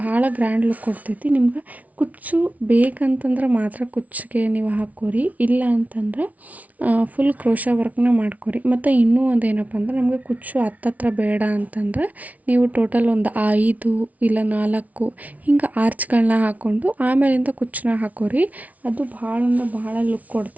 ಗ್ರ್ಯಾಂಡ್ ಲುಕ್ ಕೊಡ್ತೈತಿ. ನಿಮ್ಗೆ ಕುಚ್ಚು ಬೇಕಂತಂದ್ರೆ ಮಾತ್ರ ಕುಚ್ಚಿಗೆ ನೀವು ಹಾಕ್ಕೋರಿ, ಇಲ್ಲ ಅಂತಂದ್ರೆ ಫುಲ್ ಕ್ರೋಶ ವರ್ಕ್ನ ಮಾಡ್ಕೊರಿ. ಮತ್ತು ಇನ್ನೂ ಒಂದು ಏನಪ್ಪ ಅಂದ್ರೆ ನಮಗೆ ಕುಚ್ಚು ಹತ್ತತ್ರ ಬೇಡ ಅಂತಂದ್ರೆ ನೀವು ಟೋಟಲ್ ಒಂದು 5 ಇಲ್ಲ 4 ಹಿಂಗೆ ಆರ್ಚ್ಗಳನ್ನ ಹಾಕ್ಕೊಂಡು ಆಮೇಲಿಂದ ಕುಚ್ಚನ್ನ ಹಾಕೋರಿ. ಅದು ಭಾಳ ಲುಕ್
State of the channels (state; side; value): late; left; 0.071 ms